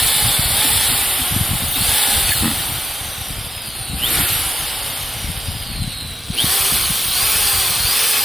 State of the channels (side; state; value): both; normal; correlation 0.89